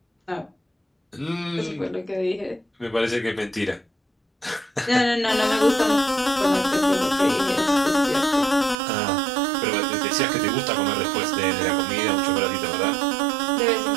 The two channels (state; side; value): drops out; left; at 8.8 s